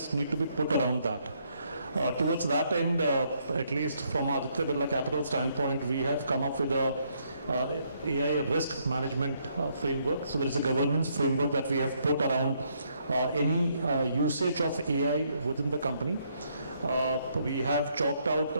need to be put around that. Towards that end, at least from Aditya Birla Capital standpoint, we have come up with a AI risk management framework. So there is a governance framework that we have put around any usage of AI within the company. We have chalked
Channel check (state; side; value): inverted; both; correlation -0.72